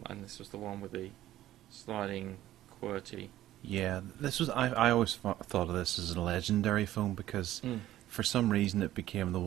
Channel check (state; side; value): quieter; left; 13.9 dB